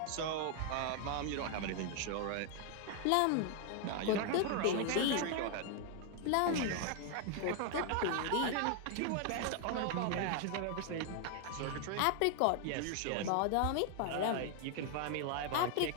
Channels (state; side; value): different; both; correlation 0.00